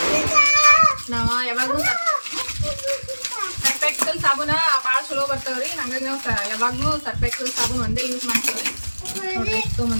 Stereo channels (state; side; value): inverted; both; correlation -1.00